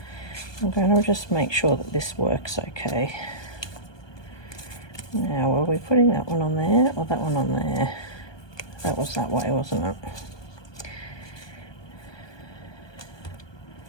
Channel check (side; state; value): right; late; 1.2 ms